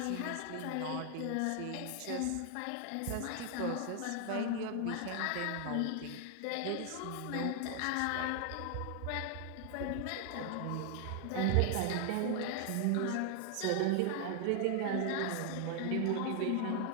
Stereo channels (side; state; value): both; different; correlation 0.00